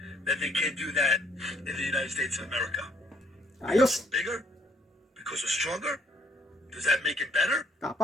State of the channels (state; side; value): normal; both; correlation 0.66